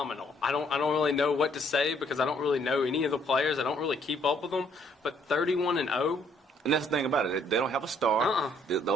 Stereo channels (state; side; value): normal; both; correlation 0.66